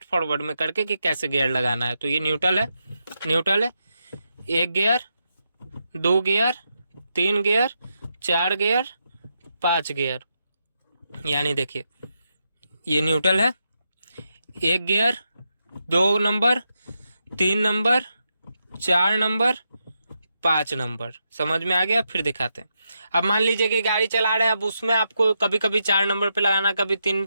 फॉरवर्ड में करके कि कैसे गियर लगाना है। तो ये न्यूट्रल है, न्यूट्रल है, 1 gear, 2 gear, 3 gear, 4 gear, 5 gear, यानी देखिए ये न्यूट्रल है, 1 gear, 2 number, 3 number, 4 number, 5 number. समझ में आ गया? फिर दिखाते हैं। अब मान लीजिए कि गाड़ी चला रहे हैं, अब उसमें आपको कभी कभी 4 नंबर पे लगाना है, कभी 3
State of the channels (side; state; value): both; inverted; correlation -0.84